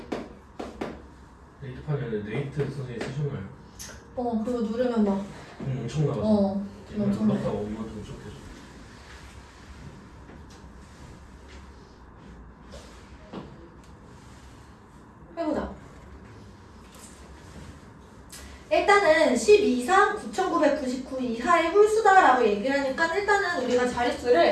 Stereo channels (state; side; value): identical; both; correlation 1.00